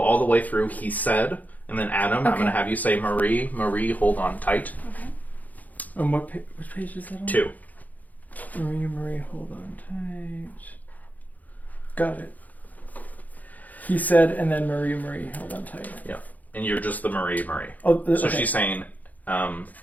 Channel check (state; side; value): late; right; 0.080 ms